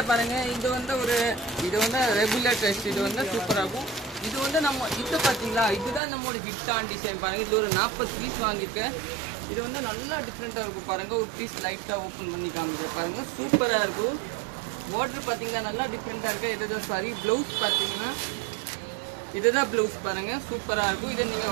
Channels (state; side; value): drops out; left; at 6.0 s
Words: பாருங்க, இது வந்து ரெகுலர் டெஸ்ட். இது வந்து சூப்பரா இருக்கும். இது வந்து நம்ம இது பாத்தீங்களா, இதுதான் நம்மளோட ஹிட்டான டிசைன் பாருங்க. இது ஒரு 40 பீஸ் வாங்கியிருக்கேன். இது வந்து நல்லா டிஃப்ரெண்டா இருக்கும் பாருங்க. ஒரு பீஸ் லைட்டா ஓப்பன் பண்ணி காமிக்கிறேன் பாருங்க, சூப்பரா இருக்கும். பார்டர் பாத்தீங்கன்னா நல்லா டிஃப்ரெண்டா இருக்கு. இதுதான் சாரி. பிளவுஸ் பாத்தீங்கன்னா இதுதான் பிளவுஸ் பாருங்க, சூப்பரா இருக்கும். இதை நீங்க